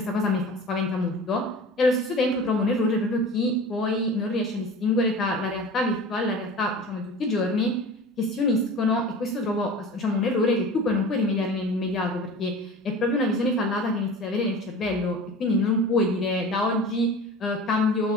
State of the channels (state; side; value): normal; both; correlation 0.37